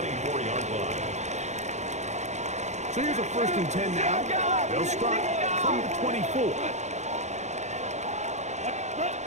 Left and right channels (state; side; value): late; left; 0.33 ms